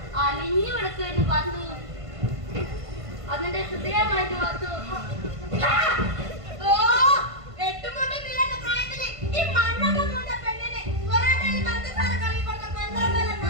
അലിഞ്ഞു കിടക്കുമായിരുന്നു പാത്തു. അതിന്റെ ഹൃദയമായിരുന്നു പാത്തു. ഈ മണ്ണൊക്കെ കൊണ്ട പെണ്ണിന് പൊറോട്ടയിൽ പഞ്ചസാര കളി കൊടുത്ത പന്ത്രണ്ടല്ല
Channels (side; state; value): left; late; 1.5 ms